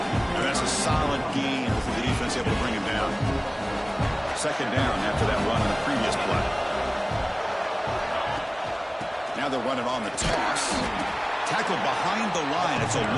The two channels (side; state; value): both; identical; correlation 1.00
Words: And that's a solid gain for the defense able to bring him down. 2nd down after that run on the previous play. Now they're running on the toss. Tackled behind the line. It's a